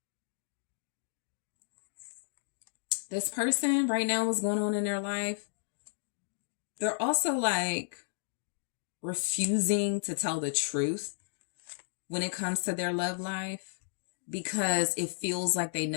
This person right now, what's going on in their life, they're also like refusing to tell the truth when it comes to their love life because it feels like they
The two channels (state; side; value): silent; right; digital silence